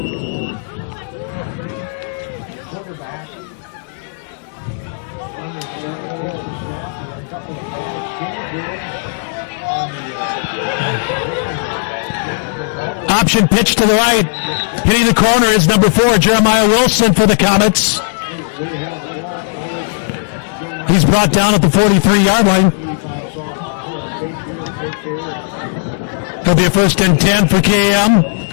Option pitch to the right. Hitting the corner is number 4, Jeremiah Wilson for the Comets. He's brought down at the 43-yard line. It'll be a 1st and 10 for KM.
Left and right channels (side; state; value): right; silent; digital silence